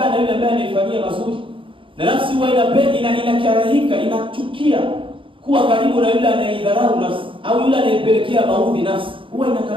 na yule ambaye anaifanyia mazuri, na nafsi huwa inakarahika, inachukia kuwa karibu na yule anayeidharau nafsi au yule anayepelekea maudhi nafsi, huwa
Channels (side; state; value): left; late; 0.25 ms